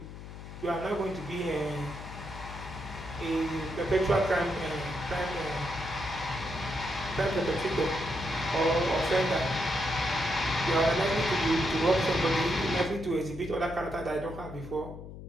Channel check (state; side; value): noise; left; hum, 12 dB below the sound